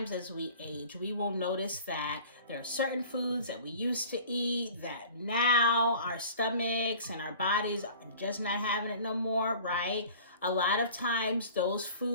as we age, we will notice that there are certain foods that we used to eat that now our stomachs and our bodies are just not having it no more, right? A lot of times those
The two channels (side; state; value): both; inverted; correlation -0.44